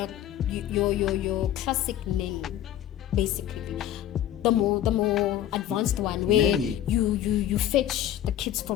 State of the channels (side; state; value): right; quieter; 11.7 dB